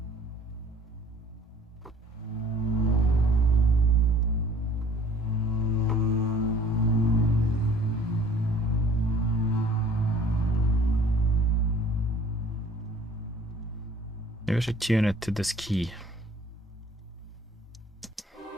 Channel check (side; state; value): both; normal; correlation 0.53